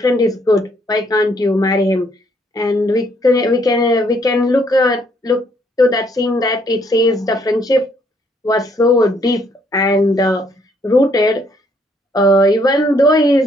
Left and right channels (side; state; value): both; normal; correlation 0.68